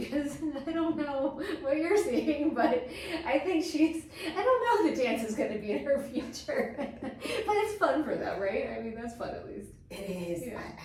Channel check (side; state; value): both; identical; correlation 1.00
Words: I don't know what you're seeing, but I think I don't know if the dance is going to be in her future, but it's fun for them, right? I mean, that's fun at least. It is. Yeah. I